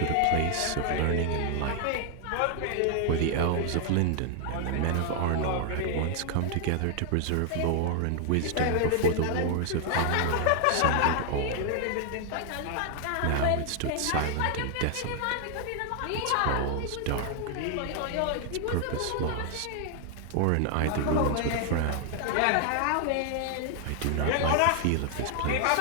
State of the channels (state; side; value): different; both; correlation 0.00